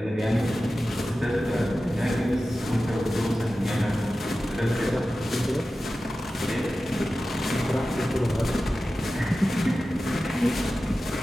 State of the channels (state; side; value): normal; both; correlation 0.94